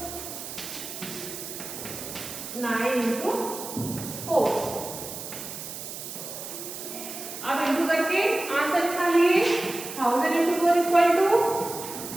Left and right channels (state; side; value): noise; right; hiss, 9 dB below the sound